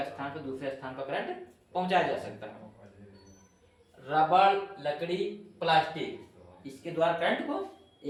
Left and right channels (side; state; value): both; identical; correlation 1.00